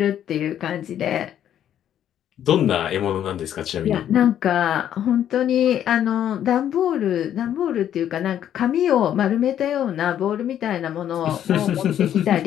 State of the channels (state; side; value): quieter; right; 10.4 dB